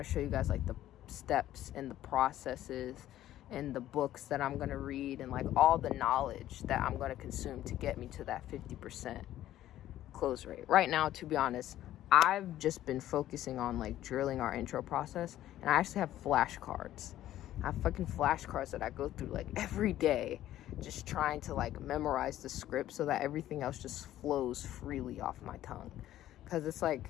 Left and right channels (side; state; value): right; quieter; 13.2 dB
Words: to show you guys like the steps and the processes and the books that I'm going to read and like all the knowledge that I'm going to consume to get me to that 50% close rate. Right now, to be honest, I've just been focusing on like drilling our intro process, and I actually have flashcards. I have fucking flashcards that I go through like every day, just trying to like memorize the script so that everything else just flows freely off my tongue. Because it's like,